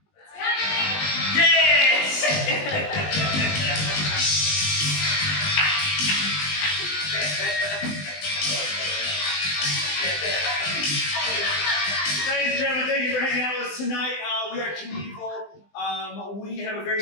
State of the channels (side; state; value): right; late; 20 ms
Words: It's coming! Yes! Ladies and gentlemen, thank you for hanging out with us tonight. We are Knievel. We have a very